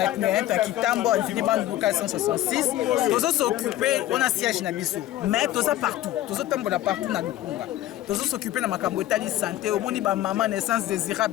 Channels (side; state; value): right; quieter; 14.3 dB